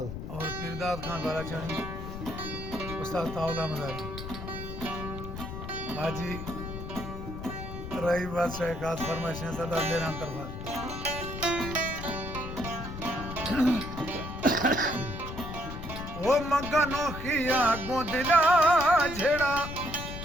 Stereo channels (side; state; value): left; noise; rumble, 8 dB below the sound